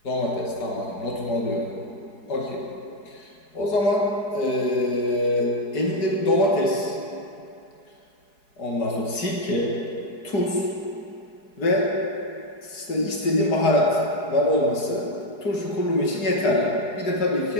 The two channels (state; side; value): late; right; 4.8 ms